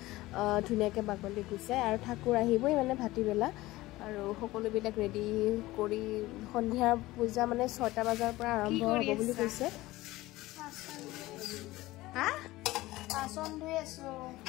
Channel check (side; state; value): right; quieter; 18.3 dB